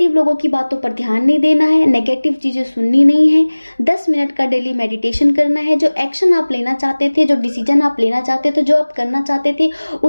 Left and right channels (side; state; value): both; inverted; correlation -1.00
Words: लोगों की बातों पर ध्यान नहीं देना है, नेगेटिव चीज़ें सुननी नहीं है। 10 मिनट का डेली मेडिटेशन करना है। जो एक्शन आप लेना चाहते थे, जो डिसीजन आप लेना चाहते थे, जो आप करना चाहते थे,